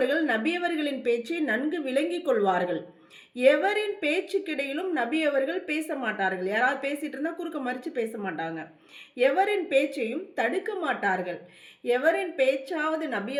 நபியவர்களின் பேச்சை நன்கு விளங்கிக் கொள்வார்கள். எவரின் பேச்சுக்கிடையிலும் நபி அவர்கள் பேச மாட்டார்கள். யாராவது பேசிட்டு இருந்தால் குறுக்க மறித்து பேச மாட்டாங்க. எவரின் பேச்சையும் தடுக்க மாட்டார்கள். எவரின் பேச்சாவது நபி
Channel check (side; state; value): both; identical; correlation 1.00